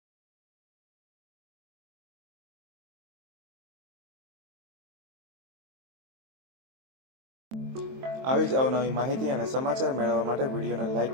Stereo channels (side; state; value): left; late; 23 ms